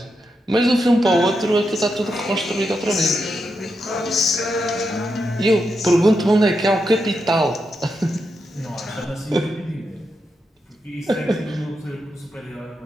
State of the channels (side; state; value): both; normal; correlation 0.85